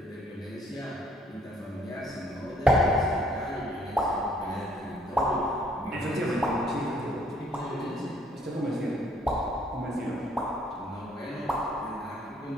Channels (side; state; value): both; normal; correlation 0.63